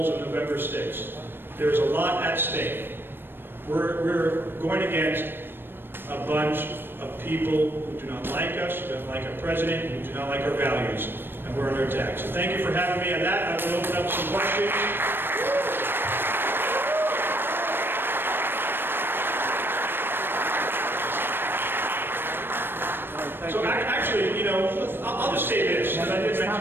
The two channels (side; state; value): left; late; 0.099 ms